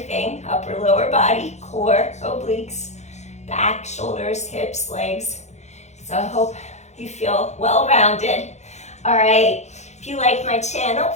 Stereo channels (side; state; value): right; late; 0.33 ms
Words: upper, lower body, core, obliques, back, shoulders, hips, legs. So I hope you feel well-rounded. All right, if you like my channel,